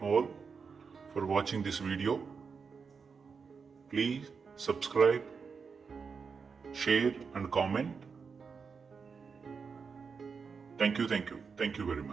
for watching this video. Please subscribe, share and comment. Thank you very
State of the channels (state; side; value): quieter; left; 5.5 dB